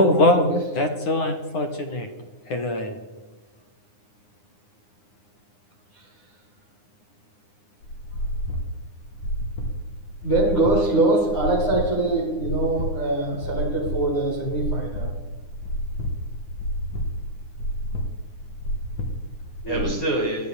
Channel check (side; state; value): right; late; 9.7 ms